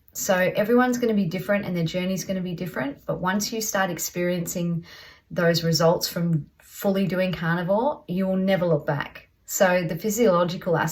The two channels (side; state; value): both; identical; correlation 1.00